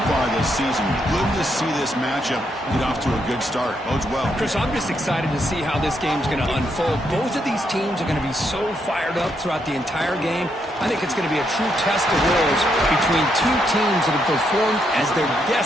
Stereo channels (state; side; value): normal; both; correlation 0.78